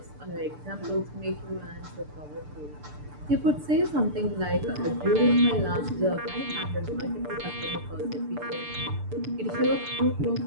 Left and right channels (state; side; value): late; left; 6.8 ms